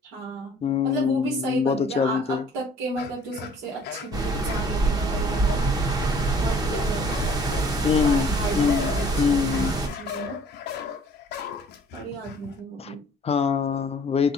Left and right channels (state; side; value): normal; both; correlation 0.55